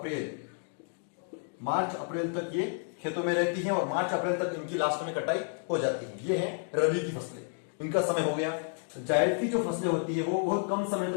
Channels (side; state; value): right; silent; 56 dB below the other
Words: अप्रैल तक ये खेतों में रहती हैं और मार्च अप्रैल तक इनकी लास्ट में कटाई हो जाती है। ये है रबी की फसलें, इनका समय हो गया। जायद की जो फसलें होती है वो बहुत कम समय